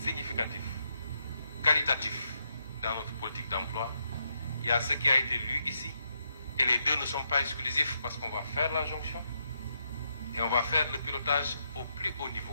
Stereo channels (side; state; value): both; inverted; correlation -0.79